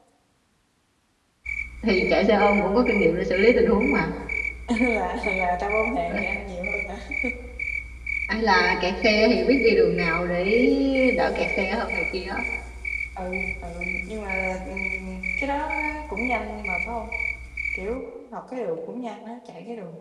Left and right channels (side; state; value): both; identical; correlation 1.00